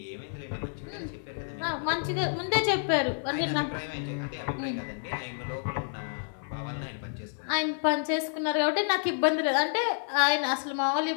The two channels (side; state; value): right; silent; 58 dB below the other